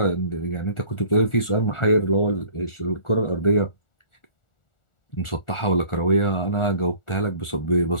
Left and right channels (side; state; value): right; late; 1.4 ms